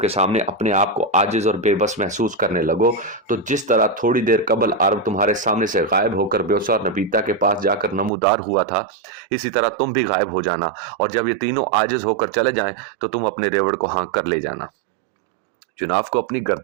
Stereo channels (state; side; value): drops out; left; at 8.1 s